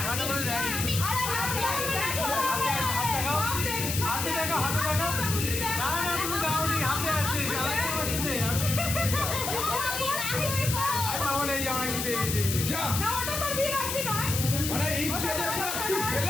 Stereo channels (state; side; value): noise; left; hiss, 2 dB below the sound